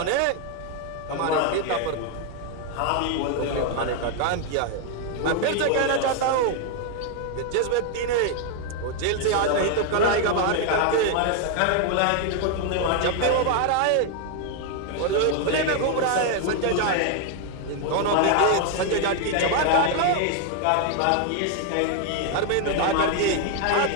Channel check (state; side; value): different; both; correlation 0.00